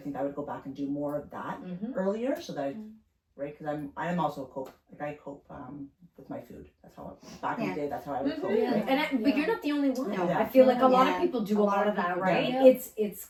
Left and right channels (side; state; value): both; identical; correlation 1.00